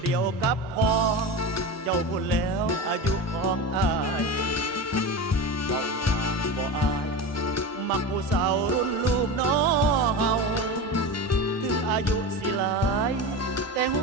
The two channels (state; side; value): normal; both; correlation 0.25